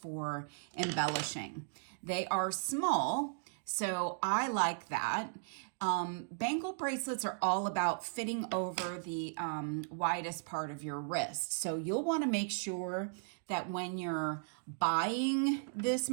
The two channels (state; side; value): silent; left; digital silence